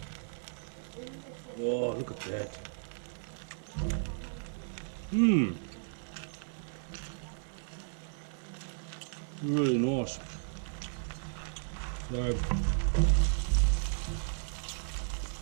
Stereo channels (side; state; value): left; silent; 55 dB below the other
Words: Oh, look at that. Really nice. So,